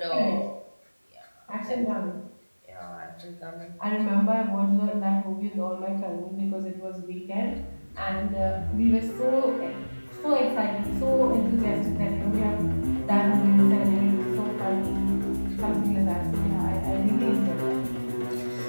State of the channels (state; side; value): inverted; both; correlation -1.00